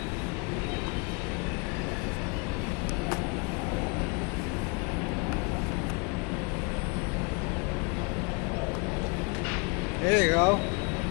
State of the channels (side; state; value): right; quieter; 32.0 dB